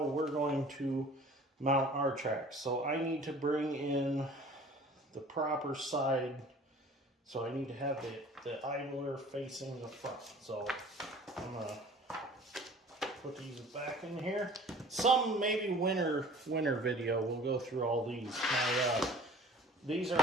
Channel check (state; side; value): normal; both; correlation 0.47